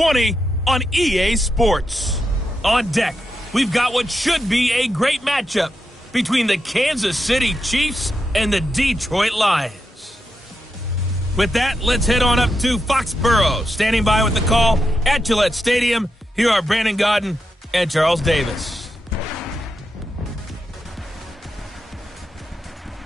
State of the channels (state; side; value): normal; both; correlation 0.86